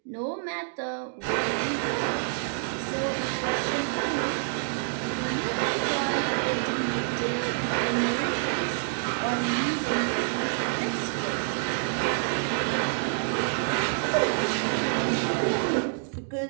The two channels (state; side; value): silent; left; 60 dB below the other